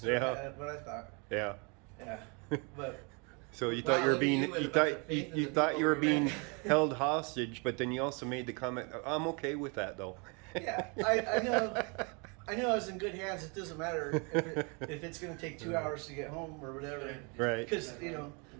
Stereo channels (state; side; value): quieter; left; 32.5 dB